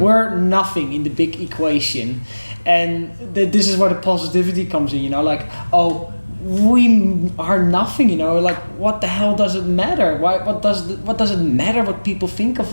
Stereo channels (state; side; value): inverted; both; correlation -1.00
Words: nothing in the big equation, and this is where the positivity comes in, you know, like we are nothing, you know, like what the hell does it matter? What does it matter what people think of